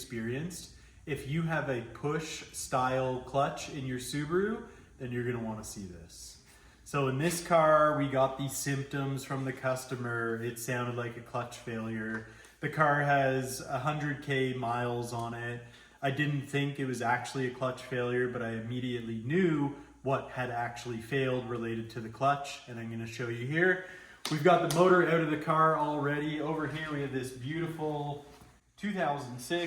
If you have a push style clutch in your Subaru, then you're gonna wanna see this. So in this car, we got these symptoms from the customer. It sounded like a clutch failure. The car has 100K miles on it. I didn't think it was actually a clutch failure, but I immediately knew what had actually failed related to the clutch, and I'm gonna show you here. We've got the motor out of the car already. Over here we have this beautiful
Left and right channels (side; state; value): both; identical; correlation 1.00